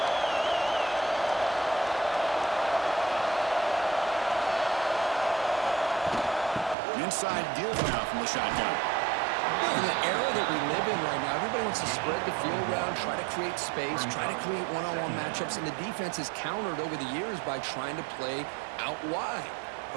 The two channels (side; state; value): left; drops out; at 6.8 s